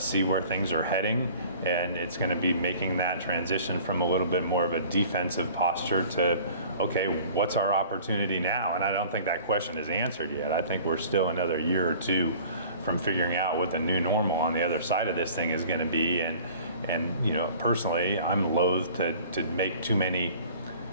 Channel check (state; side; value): inverted; both; correlation -0.47